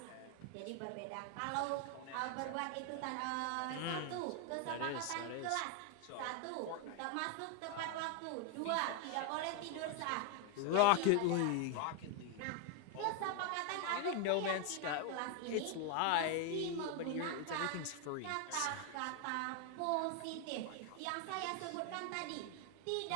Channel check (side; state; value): both; different; correlation 0.01